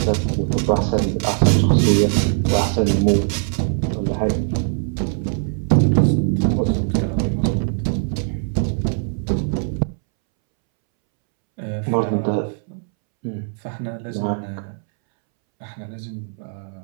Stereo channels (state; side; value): silent; left; 65 dB below the other